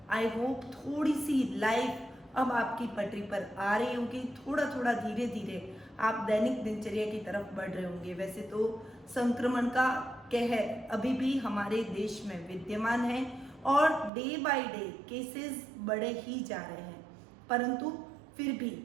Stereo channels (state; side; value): drops out; left; at 14.1 s